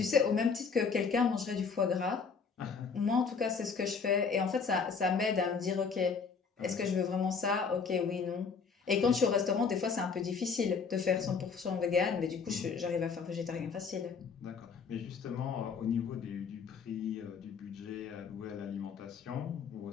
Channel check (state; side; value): quieter; right; 5.5 dB